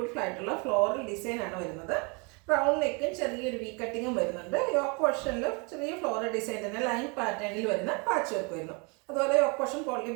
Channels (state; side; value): quieter; left; 31.6 dB